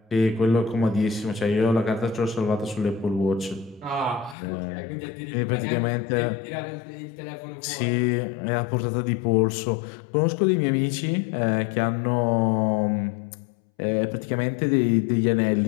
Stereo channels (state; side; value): drops out; right; at 4.4 s